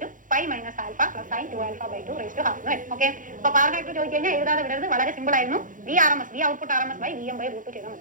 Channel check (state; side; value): late; left; 0.38 ms